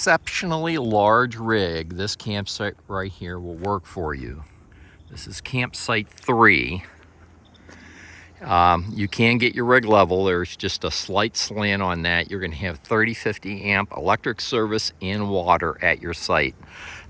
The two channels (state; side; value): identical; both; correlation 1.00